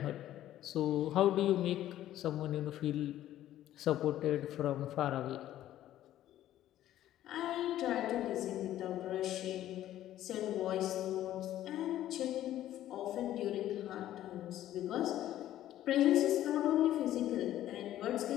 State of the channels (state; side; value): quieter; right; 12.9 dB